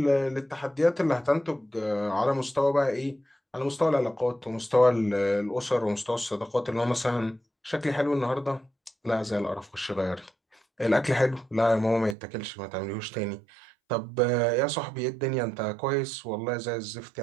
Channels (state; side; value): drops out; left; at 12.2 s